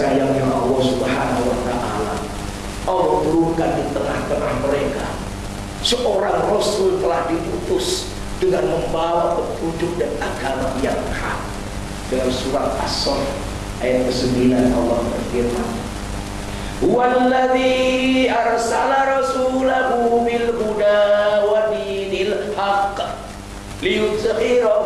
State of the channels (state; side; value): identical; both; correlation 1.00